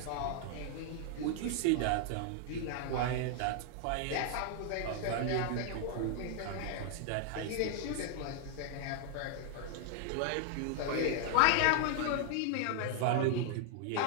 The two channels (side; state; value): both; different; correlation 0.00